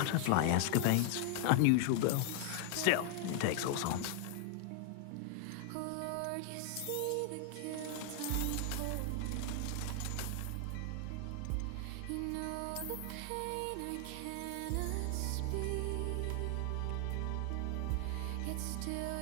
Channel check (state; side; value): different; both; correlation 0.00